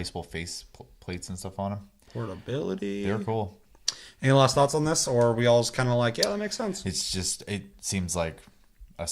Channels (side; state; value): both; identical; correlation 1.00